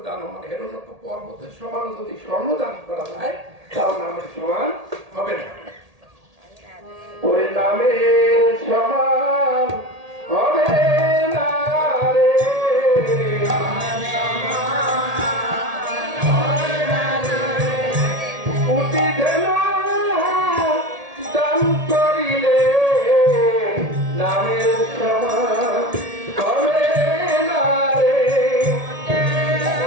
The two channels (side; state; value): left; late; 1.8 ms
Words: দান মানে হেরলক্ষ পর্বতের সমান যদি স্বর্ণ দান করা যায় তাও নামের সমান হবে না। ওই নামের সমান হবে না রে কোটি ধেনু দান করিলে নামের সমান হবে না রে